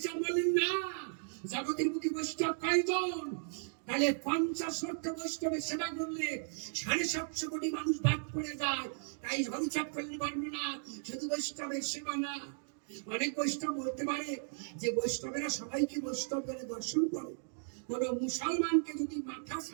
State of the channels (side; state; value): left; silent; digital silence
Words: বললেন না, জগতের মুখে বৈষ্ণব কয়জন? তাহলে 50 লক্ষ বৈষ্ণবের সেবা করলে 750 কোটি মানুষ বাদ পড়ে যায়। তাই হরিচাঁদ করলেন বর্ণনা, শুধু বৈষ্ণবের সেবা না। অনেক বৈষ্ণব বলতে পারে যে বৈষ্ণবেরা সবাইকে বৈষ্ণব বলে দর্শন করে। কোন মুসলমানকে যদি মাথা